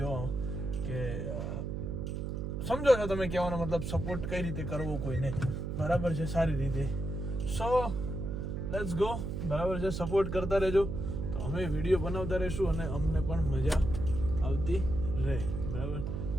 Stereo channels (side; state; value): right; noise; hum, 4 dB below the sound